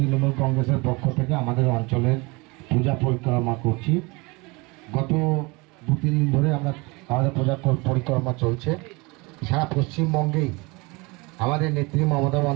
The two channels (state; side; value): quieter; left; 26.0 dB